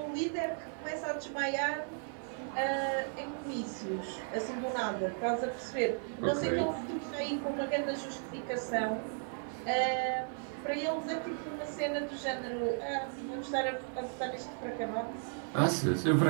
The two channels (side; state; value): left; silent; 54 dB below the other